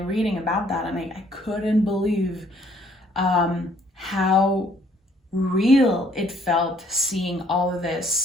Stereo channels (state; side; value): normal; both; correlation 0.63